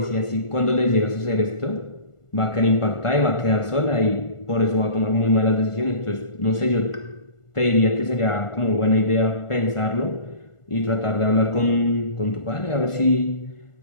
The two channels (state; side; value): late; right; 1.4 ms